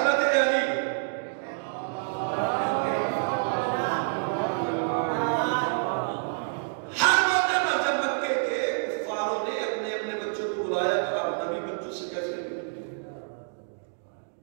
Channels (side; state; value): left; silent; digital silence